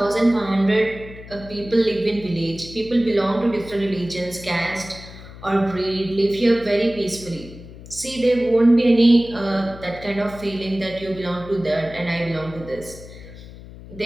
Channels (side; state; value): left; noise; hum, 16 dB below the sound